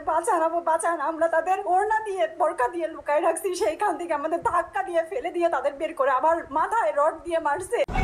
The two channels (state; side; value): identical; both; correlation 1.00